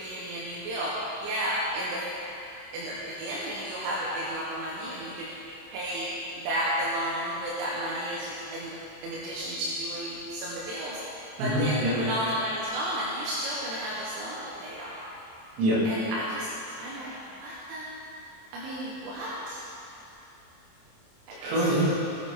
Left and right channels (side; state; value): left; late; 27 ms